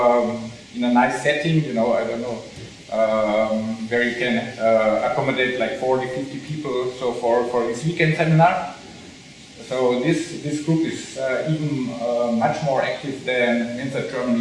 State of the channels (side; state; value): both; identical; correlation 1.00